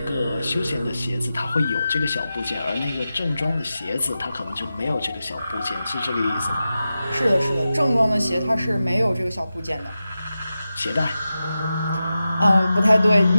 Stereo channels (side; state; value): both; inverted; correlation -0.92